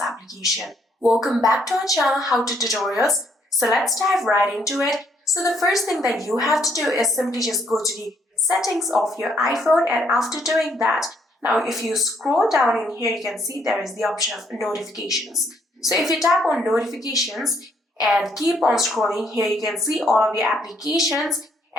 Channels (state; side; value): normal; both; correlation 0.70